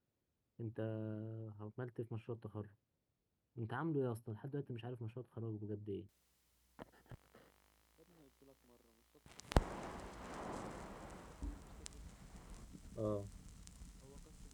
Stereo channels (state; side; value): identical; both; correlation 1.00